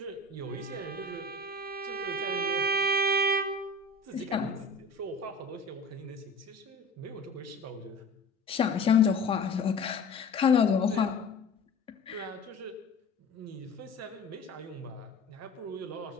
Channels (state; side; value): quieter; right; 3.2 dB